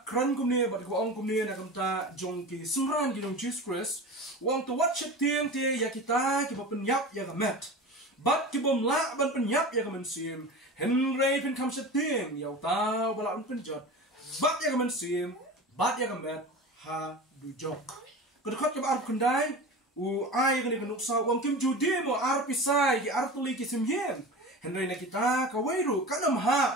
kran kumni bat kaba ong kumni na kamta jong ki sumran ki jong Jesus Christ wang to watch tiang tie ya kita ki ba penyap ya gamet bat ki bom la ban penyap ya gamen sim henry pen kam tiang ya ta bala un penjot bat ya gamen sim bat ya gamet ha du jok kedekot kaba arbu kendai u ai gani kanuksa wang kim judi mo ar pisai ki ar tuli ki sim yen henry na kita ka wairu kanam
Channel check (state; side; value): normal; both; correlation 0.32